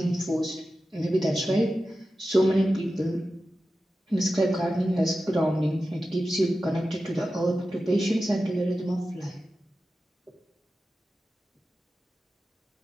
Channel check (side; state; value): both; normal; correlation 0.93